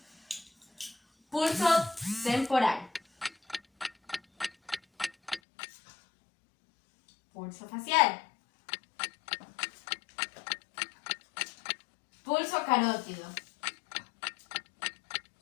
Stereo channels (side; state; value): right; drops out; at 5.4 s